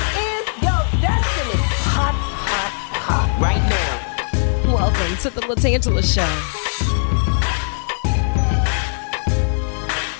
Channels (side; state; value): right; silent; 66 dB below the other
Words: is your destiny. Hot, hot, hot. Right now. Welcome to the LaTangela Show.